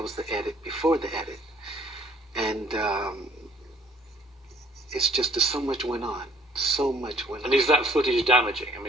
was the edit before the edit, and it's just so much went on, so much went on. And is that footage damaging? I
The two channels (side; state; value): both; normal; correlation 0.61